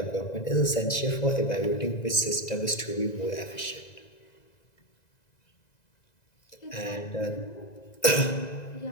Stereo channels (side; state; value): right; late; 2.0 ms